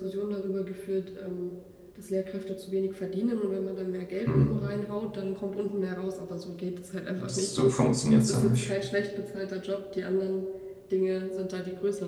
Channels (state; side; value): identical; both; correlation 1.00